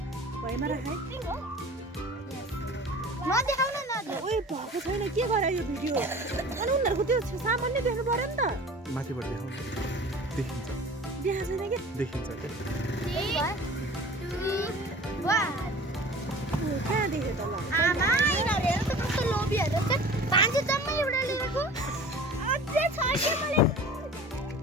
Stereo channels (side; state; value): both; normal; correlation 0.42